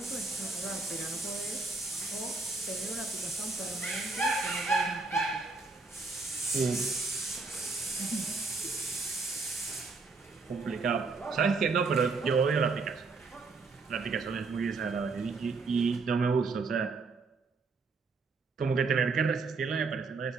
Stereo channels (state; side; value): quieter; left; 4.2 dB